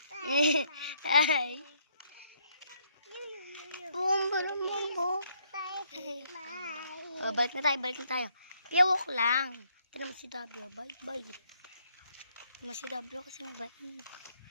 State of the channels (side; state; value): both; inverted; correlation -0.70